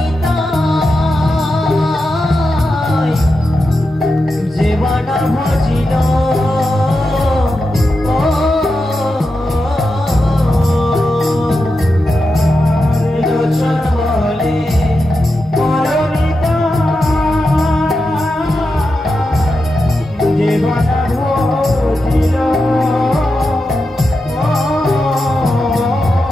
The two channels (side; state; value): both; normal; correlation 0.89